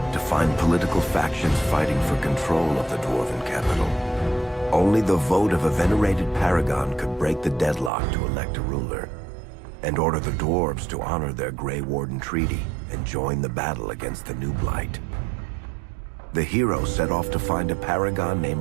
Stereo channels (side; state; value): left; drops out; at 7.9 s